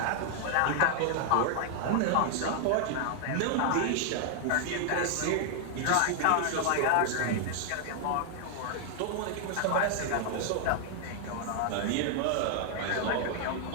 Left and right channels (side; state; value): both; different; correlation 0.00